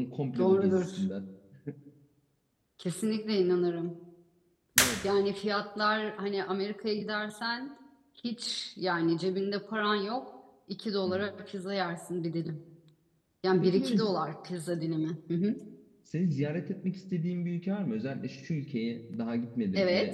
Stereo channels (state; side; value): identical; both; correlation 1.00